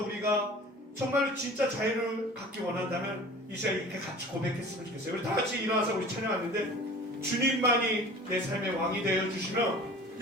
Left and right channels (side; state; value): both; normal; correlation 0.42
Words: 우리가 정말로 진짜 자유를 갖기 원한다면 이 시간에 이렇게 같이 고백했으면 좋겠어요. 우리 다 같이 일어나서 우리 찬양하는데, 주님만이 내 삶의 왕이 되어 주시면